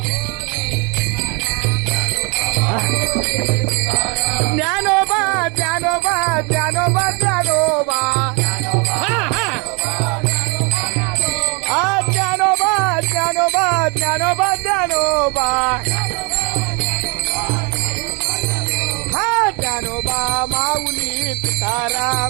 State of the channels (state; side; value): quieter; left; 31.6 dB